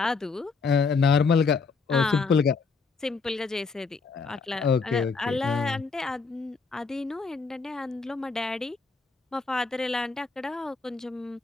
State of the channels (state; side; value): quieter; right; 4.6 dB